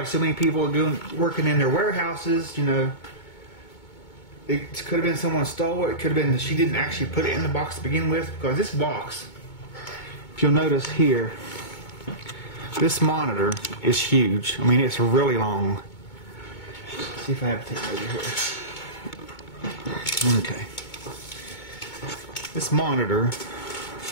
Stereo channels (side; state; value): right; late; 2.2 ms